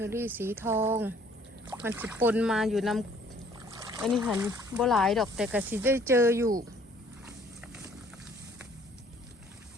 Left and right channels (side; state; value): both; normal; correlation 0.59